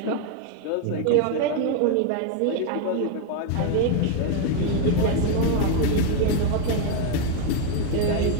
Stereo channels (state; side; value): different; both; correlation 0.01